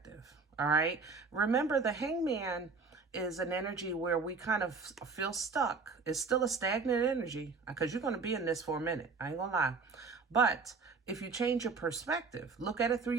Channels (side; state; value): left; quieter; 4.6 dB